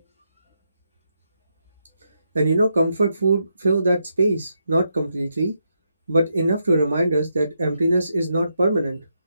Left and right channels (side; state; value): both; inverted; correlation -0.81